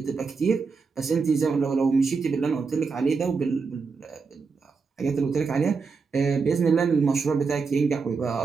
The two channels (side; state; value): left; quieter; 4.9 dB